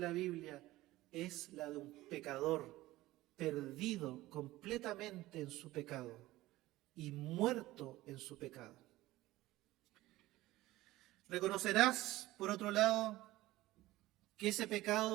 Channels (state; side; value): quieter; left; 17.3 dB